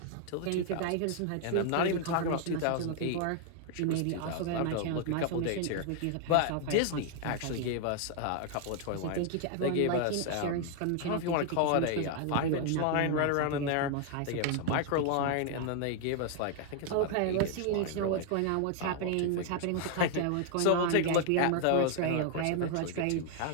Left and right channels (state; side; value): different; both; correlation 0.00